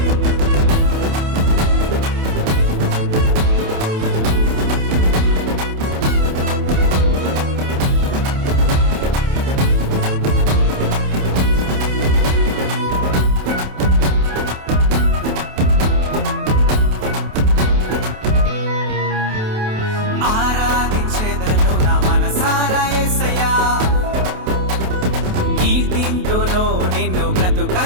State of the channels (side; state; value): left; late; 28 ms